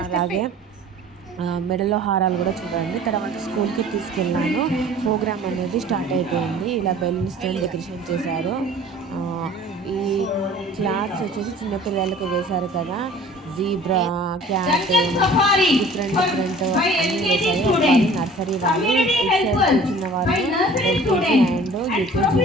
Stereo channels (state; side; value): normal; both; correlation 0.47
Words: అలాగే మెడలో హారాలు కూడా చూడండి. తర్వాత స్కూల్కి తీసుకెళ్ళాను. ప్రోగ్రామ్ అనేది స్టార్ట్ అయిపోయింది. ఇలా బెలూన్స్తో డెకరేషన్ చేశారు. ఈ క్లాత్స్ వచ్చేసి చిన్నపిల్లలకు వేశారు కదా, జీబ్రా, క్యాట్, డిఫరెంట్ అన్నీ వేశారు. వాళ్ళు నర్సరీ వాళ్ళు, ఇటు సైడ్ కూర్చున్న వాళ్ళు ఎల్కేజీ అండ్ యూకేజీ